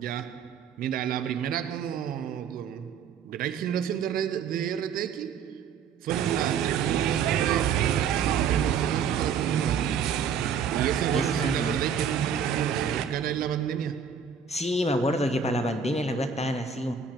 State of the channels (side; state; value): left; quieter; 6.7 dB